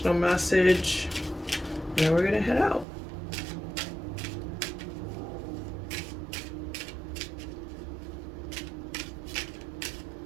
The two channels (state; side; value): drops out; left; at 2.9 s